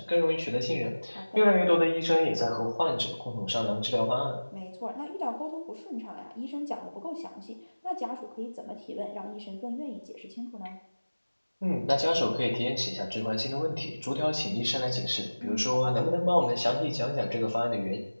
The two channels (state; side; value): inverted; both; correlation -1.00